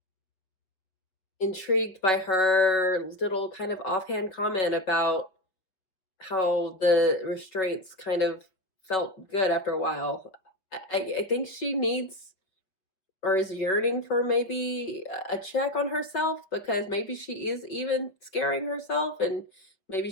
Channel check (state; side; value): late; right; 5.5 ms